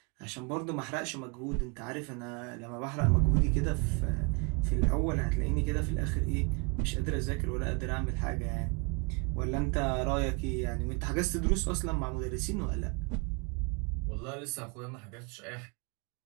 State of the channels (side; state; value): left; quieter; 31.0 dB